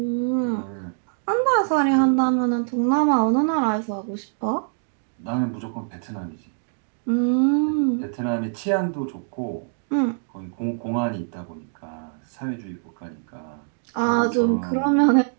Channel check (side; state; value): left; silent; digital silence